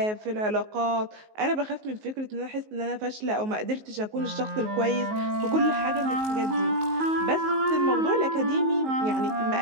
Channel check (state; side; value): late; left; 19 ms